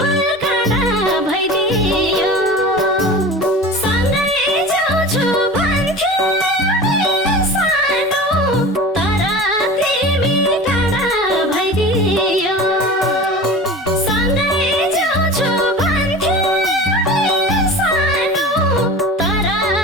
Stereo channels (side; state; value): both; normal; correlation 0.35